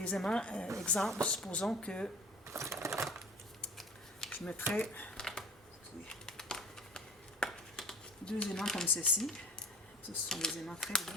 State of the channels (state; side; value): normal; both; correlation 0.42